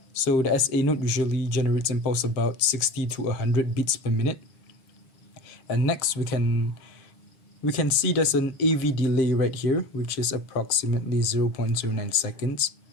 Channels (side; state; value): right; late; 7.0 ms